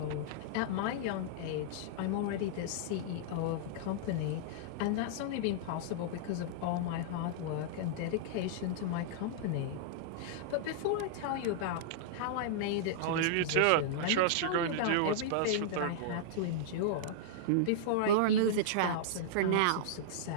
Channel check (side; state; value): both; different; correlation -0.02